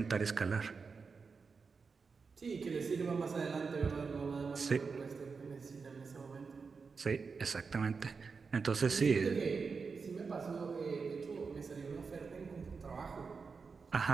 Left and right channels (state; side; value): quieter; left; 5.0 dB